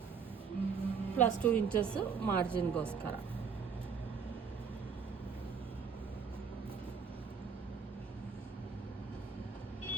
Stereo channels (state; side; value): quieter; left; 6.0 dB